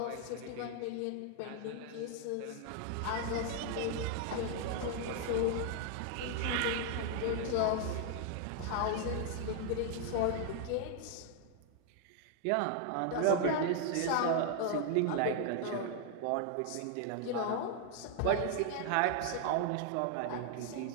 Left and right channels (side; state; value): both; different; correlation 0.00